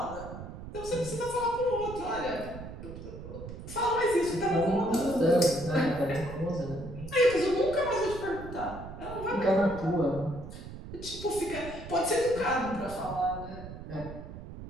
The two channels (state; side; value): noise; right; rumble, 11 dB below the sound